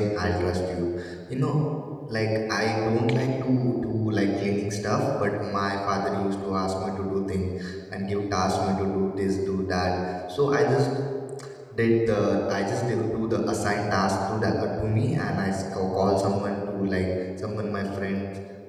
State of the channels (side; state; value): both; identical; correlation 1.00